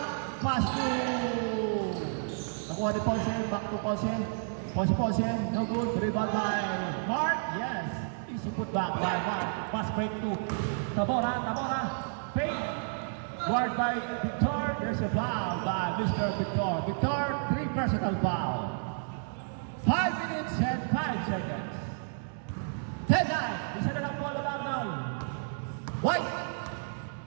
Pass to... Nakuha ni Ponce. Back to Ponce. Ponce. No good. Rebound by Mark. Yes. Easy put back by Mark. Pass break to Tabora. Fake. Guard by Victor. There's a foul by Mr. Victor. Victor, 3 personal foul. 5 minutes and 5 seconds. 10-9. Isa na lang po lang now. White.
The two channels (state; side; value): silent; left; digital silence